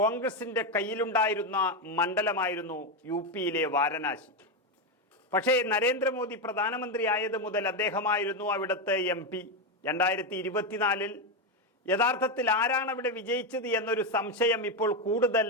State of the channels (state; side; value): normal; both; correlation 0.09